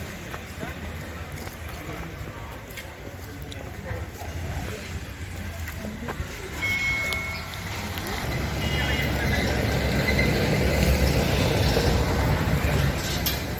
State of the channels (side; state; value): both; identical; correlation 1.00